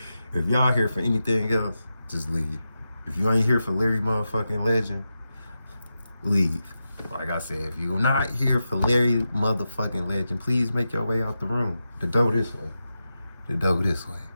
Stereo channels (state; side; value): inverted; both; correlation -0.89